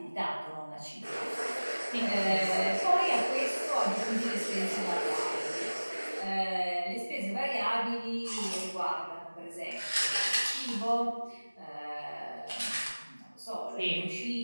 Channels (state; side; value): inverted; both; correlation -1.00